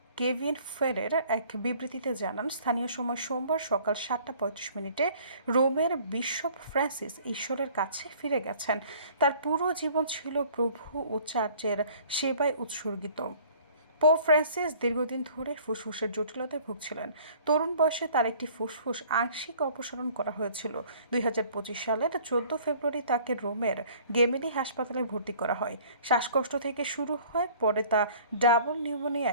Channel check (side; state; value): both; inverted; correlation -0.53